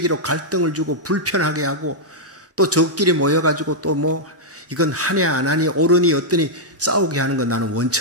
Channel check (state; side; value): normal; both; correlation -0.06